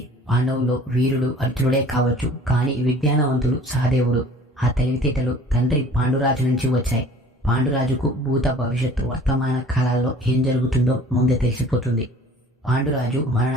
పాండవులు వీరుడు అర్జునుడే కావచ్చు, కానీ విజ్ఞానవంతుడు సహదేవుడు. ఆ తెలివితేటలు తండ్రి పాండురాజు నుంచి వచ్చాయి. పాండురాజుకు భూత భవిష్యత్తు వర్తమాన కాలాల్లో ఏం జరుగుతుందో ముందే తెలిసిపోతుంది. పాండురాజు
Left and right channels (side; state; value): both; normal; correlation 0.48